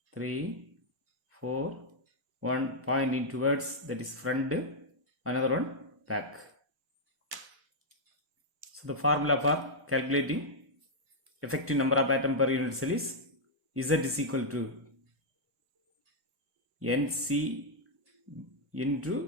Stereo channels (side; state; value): left; late; 1.1 ms